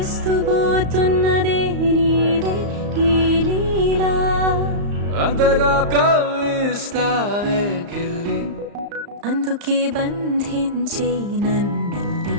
నీదే ఈ లీలా అంతగా కవ్విస్తావే గిల్లి అందుకే బంధించే నన్నల్లి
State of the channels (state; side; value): late; left; 35 ms